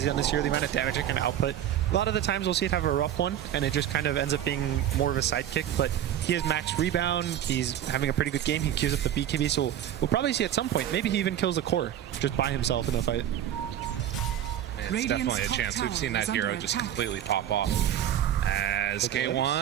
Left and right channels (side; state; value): left; quieter; 10.9 dB